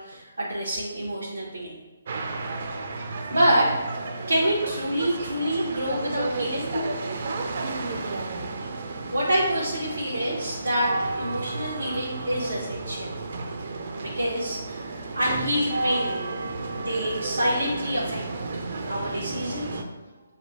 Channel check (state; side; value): inverted; both; correlation -0.82